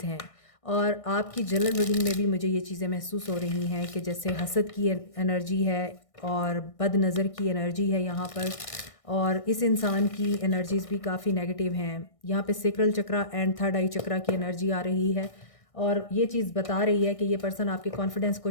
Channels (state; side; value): late; right; 1.6 ms